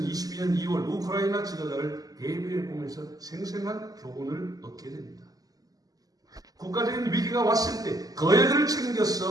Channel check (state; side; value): late; left; 0.18 ms